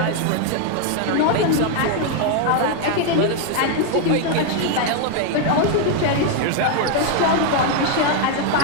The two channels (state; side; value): different; both; correlation 0.00